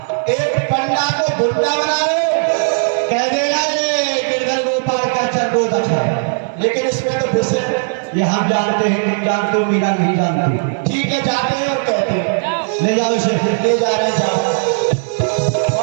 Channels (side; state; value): left; silent; 63 dB below the other